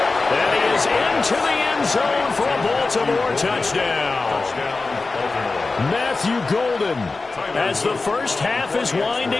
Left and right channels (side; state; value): right; quieter; 3.7 dB